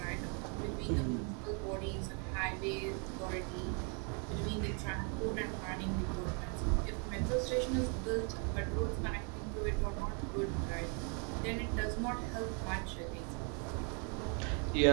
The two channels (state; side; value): quieter; left; 37.5 dB